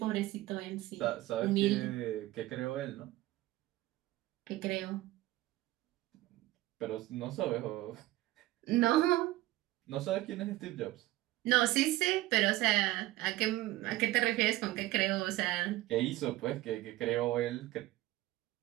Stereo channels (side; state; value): left; quieter; 17.2 dB